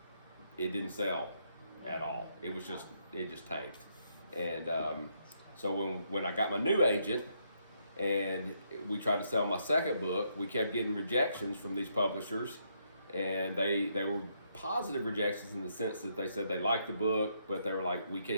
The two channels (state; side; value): inverted; both; correlation -0.76